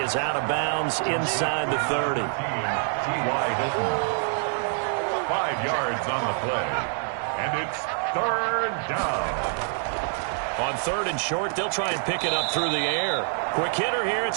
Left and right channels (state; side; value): silent; left; 61 dB below the other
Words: is out of bounds inside the 30. T.Y. Hilton. 5 yards on the play. And it's third down. On third and short, they'll try and pick it up through the air. Quick hitter here, it's